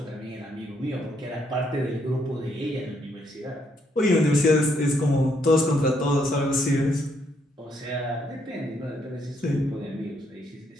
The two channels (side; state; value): both; normal; correlation 0.73